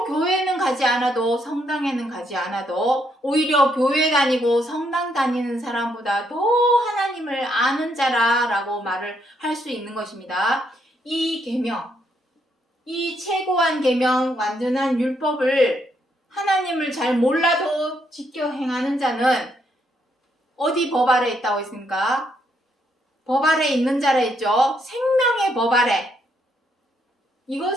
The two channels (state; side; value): normal; both; correlation 0.75